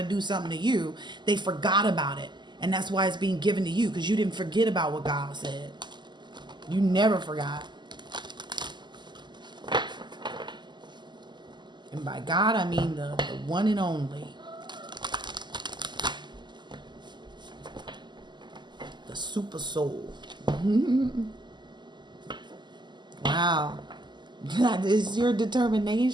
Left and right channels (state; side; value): late; left; 0.21 ms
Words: do something to you. They forgot about it. And that's why it's being given to you, because you didn't forget about what God said. You never forgot. And by God, I mean the one and only. The super soul. Wow. That is your